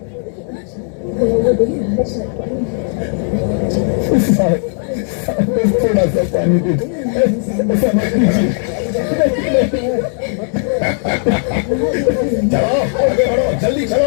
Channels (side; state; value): right; silent; 57 dB below the other